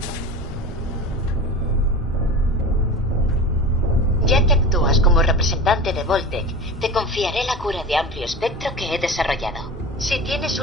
Ya que actúas como representante de Voltec, te confiaré la cura de amplio espectro que he desarrollado. Si tienes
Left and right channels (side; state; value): both; normal; correlation 0.31